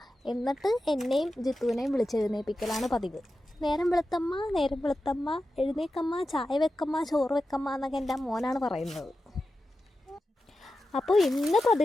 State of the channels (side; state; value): both; normal; correlation 0.92